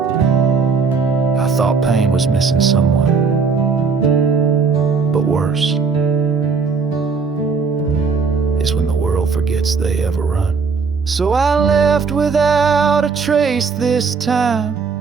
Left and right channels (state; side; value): quieter; left; 5.1 dB